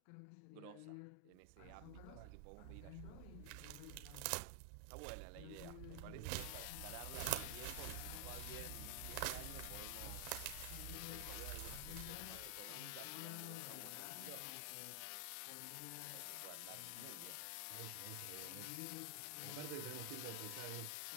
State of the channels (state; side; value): different; both; correlation 0.00